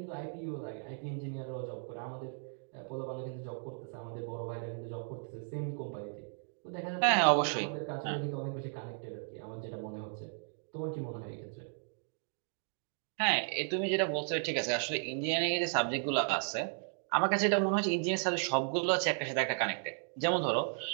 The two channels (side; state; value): left; silent; 54 dB below the other